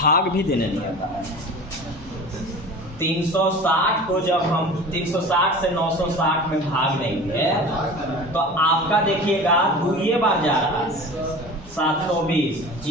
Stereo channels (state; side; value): normal; both; correlation 0.37